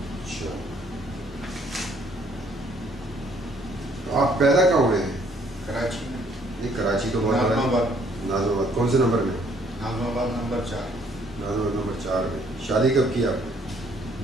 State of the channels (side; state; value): both; normal; correlation 0.64